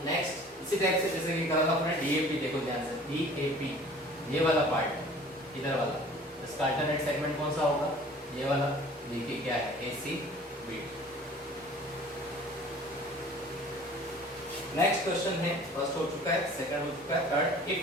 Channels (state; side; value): normal; both; correlation 0.47